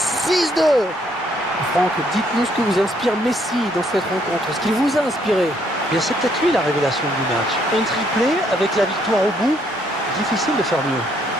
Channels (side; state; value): both; normal; correlation 0.69